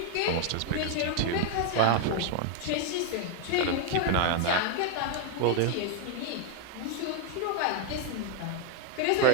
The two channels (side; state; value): both; different; correlation 0.01